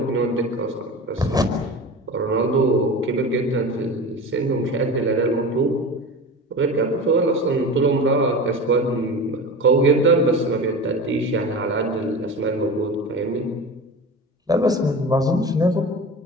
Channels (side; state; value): both; normal; correlation 0.31